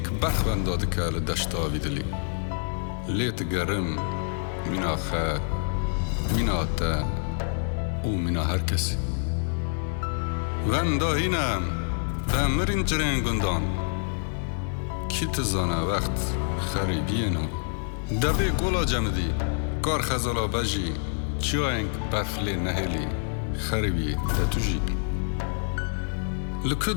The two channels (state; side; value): silent; right; 60 dB below the other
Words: بەخوەن دادکە لە دەشتاوی دلی لێت گەرم مینا خە مینا تە و مینا هەر کەسی وەندا هینەم مرین جرین گندان کی تزانه وقت خریبینو دبی گولا جمدی کار خزالا بجی چیاینگ برفلی نهلی خریبی دتوجی لکو